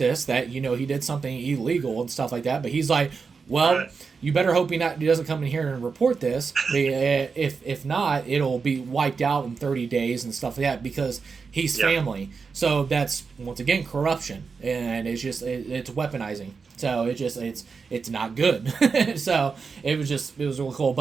that he did something illegal and stuff like that. But he's like, well, you better hope he doesn't come in here and report this. If not, it'll be wiped out in 30 days and stuff like that, because he's family. So that's, once again, corruption, and it's just it's weaponizing. So it's not good. So it was really cool.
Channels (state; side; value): quieter; left; 5.1 dB